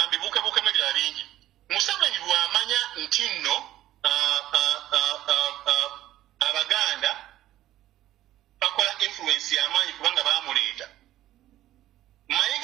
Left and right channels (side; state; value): left; quieter; 13.9 dB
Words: ebirala bingi. Museveni bw'amanya nti nno Abaganda bakola influence y'amaanyi kubanga baamuleeta.